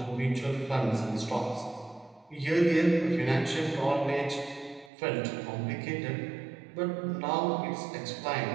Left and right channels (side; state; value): left; drops out; at 4.9 s